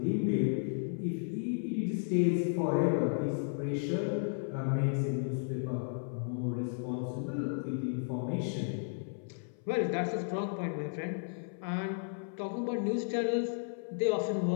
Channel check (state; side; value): silent; right; 55 dB below the other